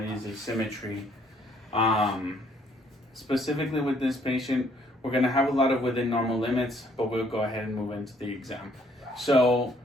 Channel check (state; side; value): normal; both; correlation 0.65